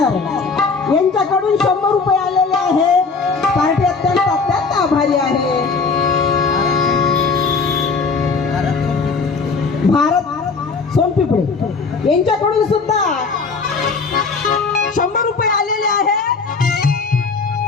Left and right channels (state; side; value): quieter; right; 4.7 dB